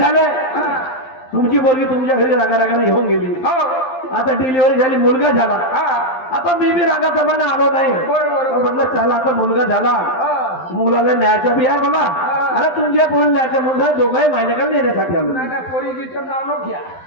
तुमची पोरगी तुमच्या घरी रागाने घेऊन गेली. आता डिलिव्हरी झाली, मुलगा झाला. आता मी बी रागाप्रमाणे आलो नाही, म्हटलं चला आता मुलगा झाला, मुलाला न्यायचा बी आहे मला. अरे तुमच्या पोरी न्यायच्या मुलगा दोघंही माझ्याकडे नेण्यासाठी आलो. पोरीचं नाव नको घ्या.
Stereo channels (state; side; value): late; right; 12 ms